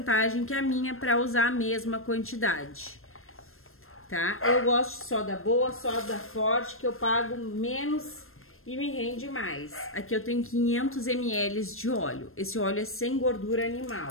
que a minha para usar a mesma quantidade. Tá? Eu gosto de soda boa, soda forte, que eu pago menos e me rende mais. Aqui eu tenho 500 ml de óleo. Esse óleo é sem gordura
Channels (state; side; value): late; right; 0.61 ms